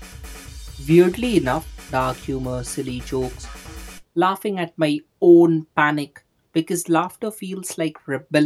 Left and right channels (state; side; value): identical; both; correlation 1.00